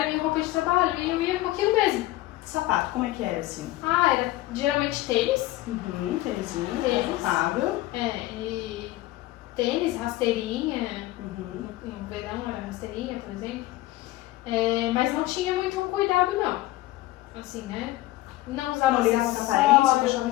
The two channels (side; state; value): right; quieter; 17.1 dB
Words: minha roupa de trabalho e eu ia com aquilo mesmo. Sapato, como é que era assim? Era geralmente tênis. Tênisinho, Tênis. confortável. E tênis, rasteirinha. No verão era rasteirinha, por exemplo. Mas não tinha muito cuidado, não. Assim, né? Não usava não ligava pra aparência, eu achava